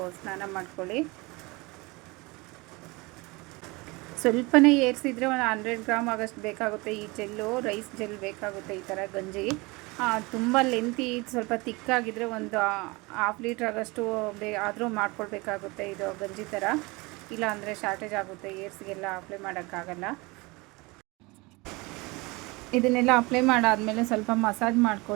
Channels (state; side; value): quieter; left; 24.8 dB